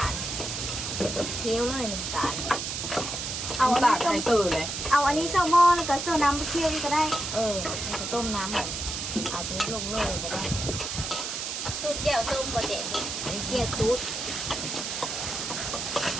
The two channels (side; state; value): right; noise; hiss, 4 dB below the sound